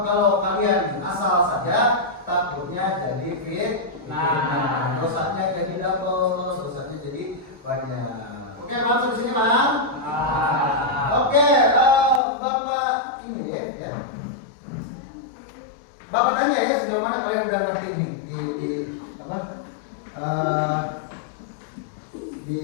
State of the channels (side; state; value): right; drops out; at 12.2 s